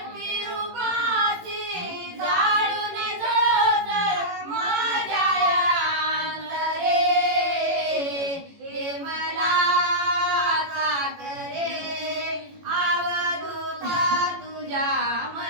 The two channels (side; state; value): left; late; 18 ms